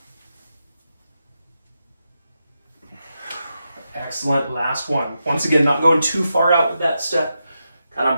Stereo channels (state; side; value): inverted; both; correlation -0.87